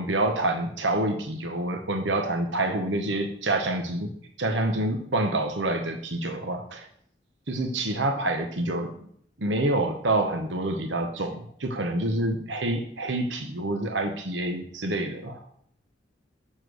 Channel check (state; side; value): normal; both; correlation 0.14